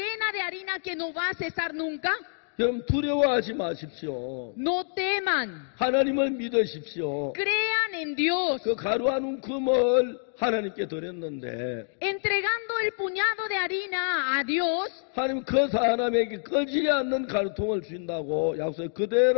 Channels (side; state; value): right; silent; digital silence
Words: de harina que no va a cesar nunca. 여러분 두려워하지 마십시오. No teman, 하나님을 믿으십시오. crean en Dios. 그 가루 한 움큼을 하나님께 드렸는데 Entregando el puñado de harina a Dios, 하나님 그 사람에게 꺼지지 않는 가루통을 주신다고 약속